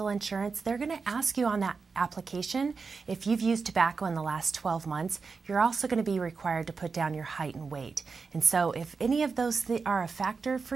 insurance, they're going to ask you on that application if you've used tobacco in the last 12 months. You're also going to be required to put down your height and weight. And so if any of those are a factor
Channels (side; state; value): left; quieter; 4.8 dB